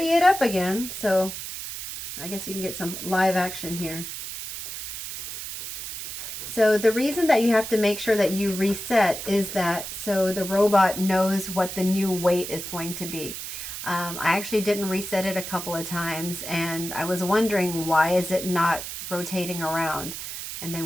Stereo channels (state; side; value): noise; right; hiss, 8 dB below the sound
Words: it up again. So I guess you can get some live action here. So the reason that you have to make sure that you reset is that so the robot knows what the new weight is going to be. I actually didn't reset it a couple of times, and I was wondering, why is it not rotating around? And then